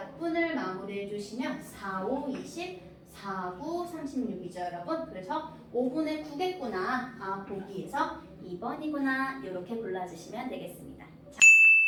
마무리해 주시면 4, 5, 20, 4, 9, 36이죠, 여러분. 그래서 5분의 9겠구나. 보기에서 2번이구나. 이렇게 골라주시면 되겠습니다.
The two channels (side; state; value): both; identical; correlation 1.00